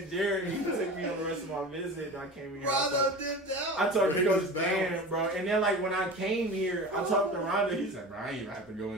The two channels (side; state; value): both; normal; correlation 0.33